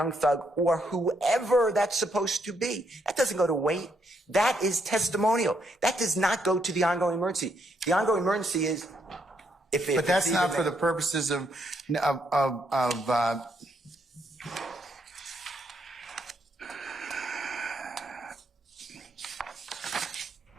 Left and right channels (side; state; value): both; normal; correlation 0.75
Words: Thug or whoever that's supposed to be. That doesn't go to weight. That is testimonial. That does not go to the ongoing emergency. The ongoing emergency is But that's not for the purposes of